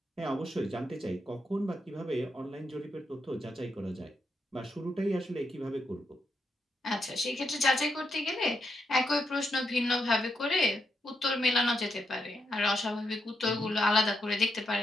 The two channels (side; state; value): both; normal; correlation 0.81